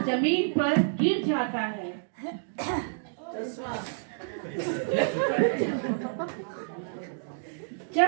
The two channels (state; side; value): silent; left; digital silence